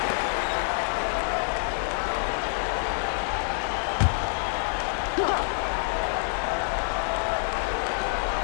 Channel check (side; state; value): right; silent; 57 dB below the other